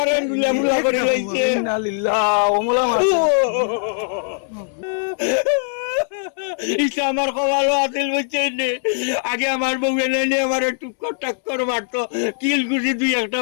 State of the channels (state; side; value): silent; right; 65 dB below the other